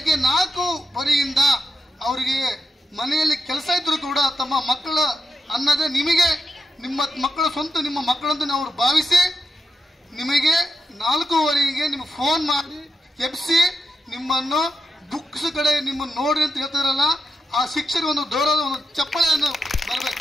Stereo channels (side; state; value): both; normal; correlation 0.86